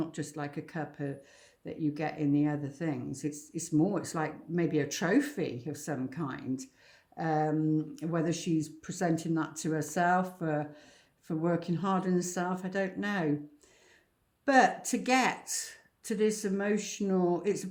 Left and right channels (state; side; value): identical; both; correlation 1.00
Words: just like a cup that you get in the other things. It's more, it's like maybe a trophy of some kind. Whether she's presenting that to herself for working hard on herself, I don't know. But to get to this emotional, it's